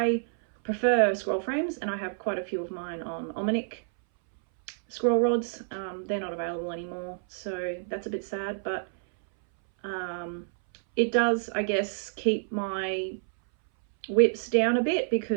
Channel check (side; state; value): left; silent; 59 dB below the other